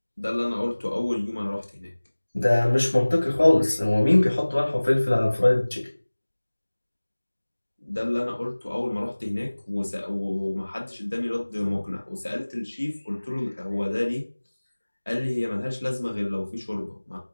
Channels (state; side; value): inverted; both; correlation -1.00